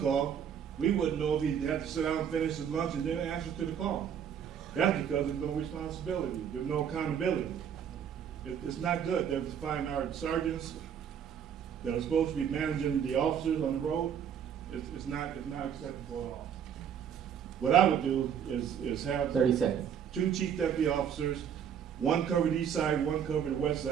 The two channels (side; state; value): left; quieter; 8.4 dB